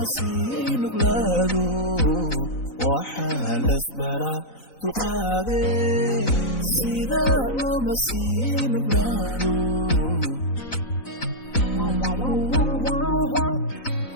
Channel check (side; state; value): right; late; 3.9 ms